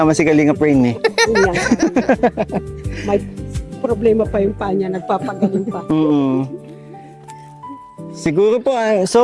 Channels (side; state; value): both; identical; correlation 1.00